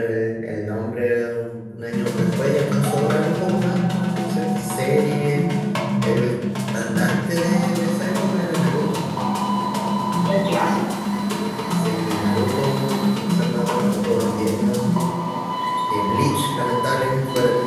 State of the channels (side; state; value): both; identical; correlation 1.00